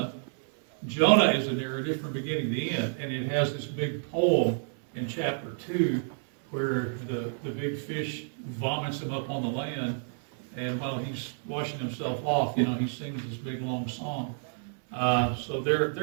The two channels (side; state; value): left; silent; 58 dB below the other